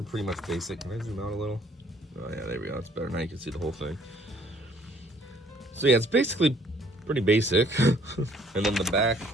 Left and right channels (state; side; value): normal; both; correlation 0.61